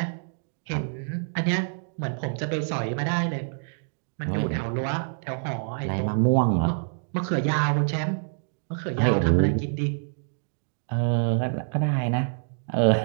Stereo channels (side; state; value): left; silent; digital silence